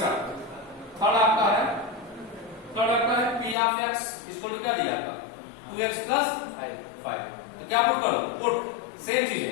थर्ड आपका है पी ऑफ एक्स इसको क्या दिया आपका? 2x plus 5। तो क्या पुट करो? पुट सेम चीज है,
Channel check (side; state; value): right; drops out; at 3.6 s